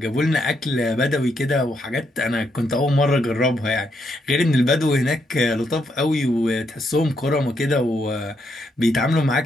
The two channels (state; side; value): normal; both; correlation 0.77